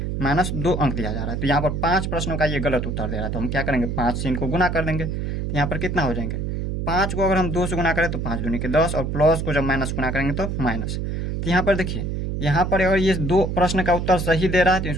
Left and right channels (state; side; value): noise; right; hum, 2 dB below the sound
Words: -2 अंक दिया जा रहा है। तो यहाँ पर 5 प्रश्नों का ये गलत उत्तर दे रहा है, तो हम क्या करेंगे? 5 से इनको गुना कर देंगे, तो यहाँ पर कितना हो जाएंगे? 5 को अगर हम 2 से गुना करें तो 5 दूनी के 10, और प्लस को जब माइनस गुना करेंगे तो माइनस। तो यहाँ पर देखिए यहाँ पर अगर ये 2 प्रश्न का उत्तर सही दे रहा है तो